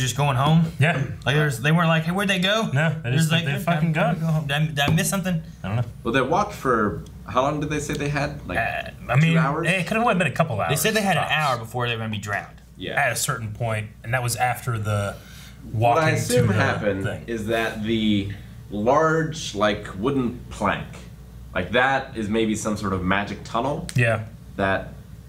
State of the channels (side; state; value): both; identical; correlation 1.00